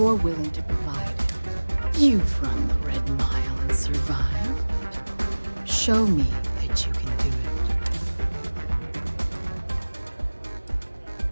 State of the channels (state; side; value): inverted; both; correlation -1.00